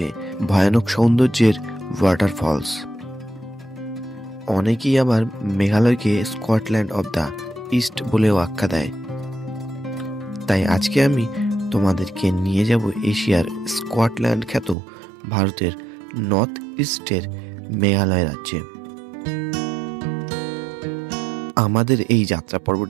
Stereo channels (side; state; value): left; drops out; at 14.8 s